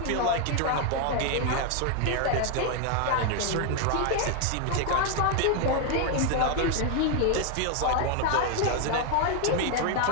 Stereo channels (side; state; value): both; different; correlation 0.01